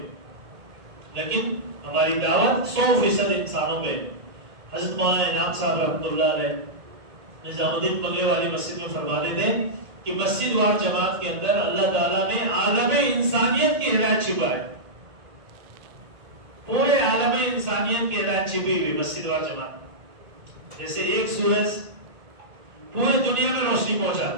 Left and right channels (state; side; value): late; left; 1.8 ms